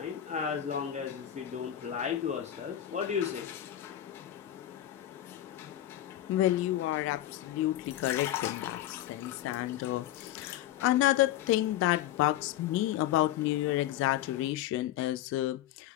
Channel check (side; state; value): right; quieter; 12.9 dB